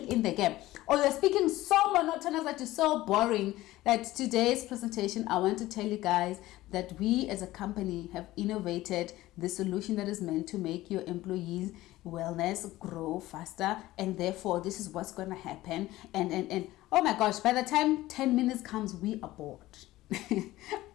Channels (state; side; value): quieter; right; 16.8 dB